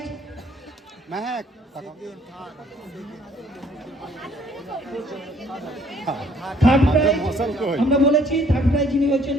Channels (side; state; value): both; normal; correlation 0.61